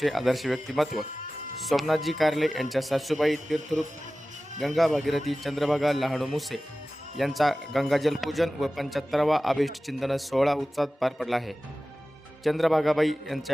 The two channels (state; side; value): normal; both; correlation 0.96